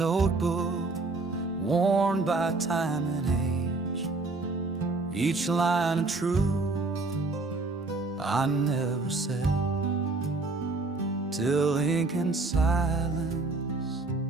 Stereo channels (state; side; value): quieter; left; 3.5 dB